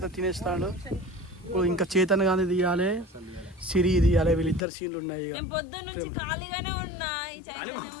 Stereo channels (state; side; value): drops out; right; at 4.6 s